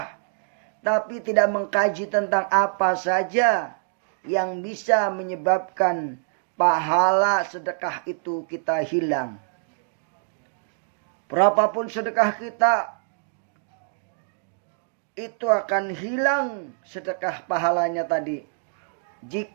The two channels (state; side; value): silent; left; digital silence